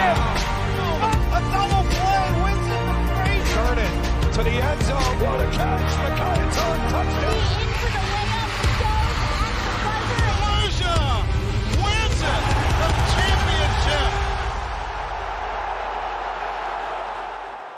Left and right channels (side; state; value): both; identical; correlation 1.00